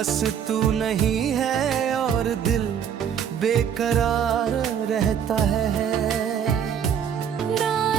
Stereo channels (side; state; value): left; quieter; 8.2 dB